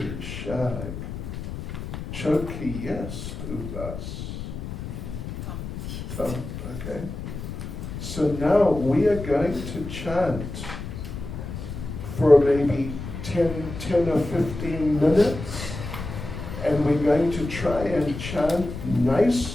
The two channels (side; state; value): left; noise; rumble, 8 dB below the sound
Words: шаг. Choki есть у вас. Okay. So now we are going to chant for maybe 10 or 15 minutes, and we're going to try and chant